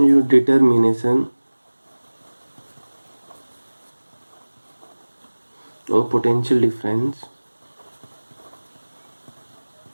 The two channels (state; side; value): inverted; both; correlation -1.00